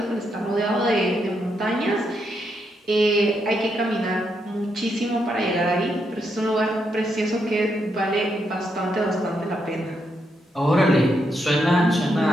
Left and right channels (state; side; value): normal; both; correlation 0.80